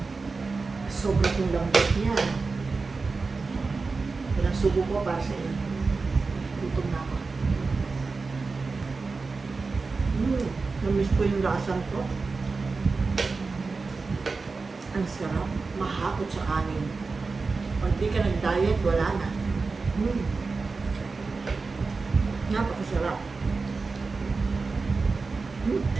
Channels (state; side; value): quieter; left; 4.2 dB